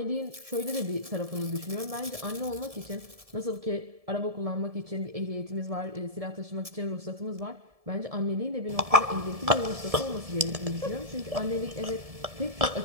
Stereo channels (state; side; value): late; left; 1.7 ms